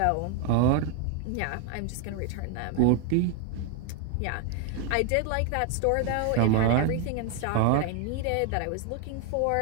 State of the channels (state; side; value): different; both; correlation 0.01